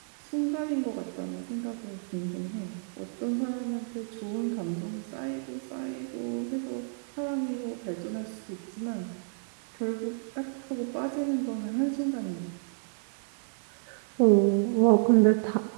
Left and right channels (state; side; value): silent; left; digital silence